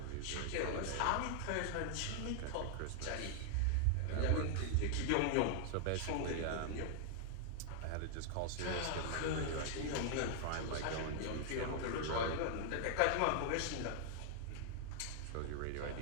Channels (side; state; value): both; different; correlation 0.00